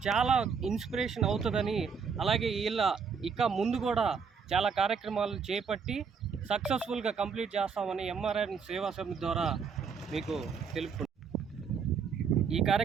చాలా ఇన్స్పిరేషన్ అవుతుందని, అలాగే ఇక ముందు కూడా చాలా కార్యక్రమాలు చేపట్టి సక్సెస్ఫుల్గా కంప్లీట్ చేస్తామని ఎంఆర్ఎన్ సేవా సమితి ద్వారా మీకు తెలుపుకుంటున్నాను. ఈ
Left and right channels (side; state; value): left; quieter; 6.1 dB